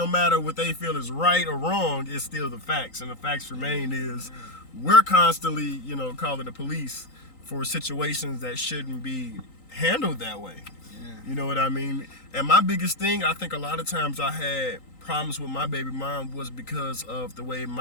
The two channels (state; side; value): late; right; 3.9 ms